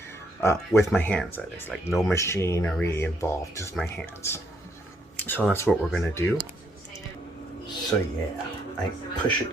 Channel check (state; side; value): normal; both; correlation 0.72